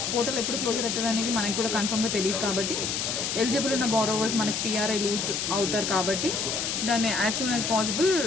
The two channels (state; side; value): noise; left; hiss, 1 dB below the sound